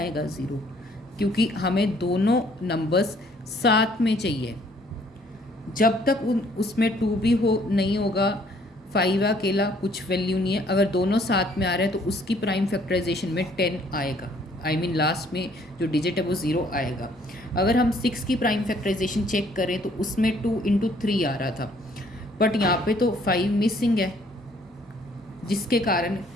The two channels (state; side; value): normal; both; correlation 0.62